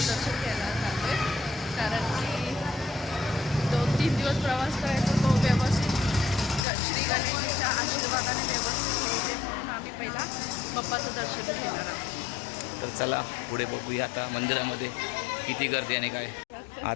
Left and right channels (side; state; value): right; drops out; at 6.6 s